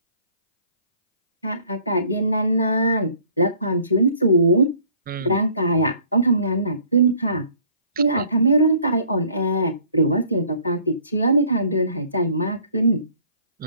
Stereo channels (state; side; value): inverted; both; correlation -0.58